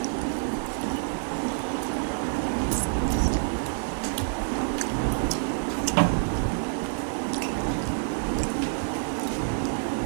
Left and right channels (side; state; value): left; silent; digital silence